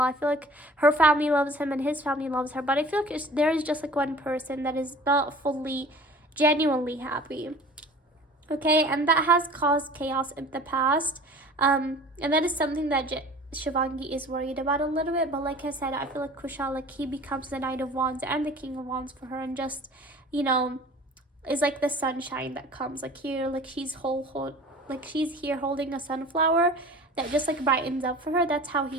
feel like her family loves him and his family loves her, but I feel like there is just like one person that is not fully genuinely happy, okay? And that has caused chaos in the past, and that is something that Shivangi is worried about a little bit. But like I said, I feel like Kushal, like, he becomes the Knight of Wands and the King of Wands for her, and just, you know, is like the sunshine that comes, like, here, like she's like she's here holding a sunflower that just like brightens up for her. That's how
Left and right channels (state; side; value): normal; both; correlation 0.44